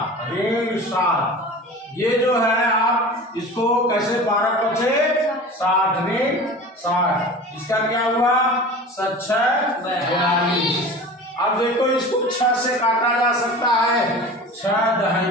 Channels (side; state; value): both; normal; correlation 0.36